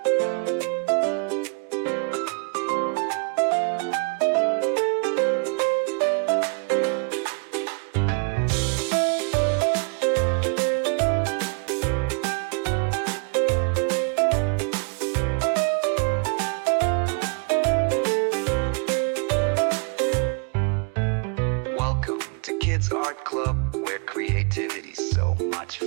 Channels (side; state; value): left; quieter; 37.0 dB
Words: Welcome to Kids Art Club, where creativity's so much